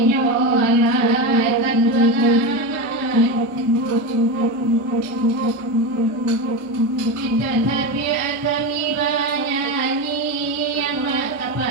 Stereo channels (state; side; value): normal; both; correlation 0.18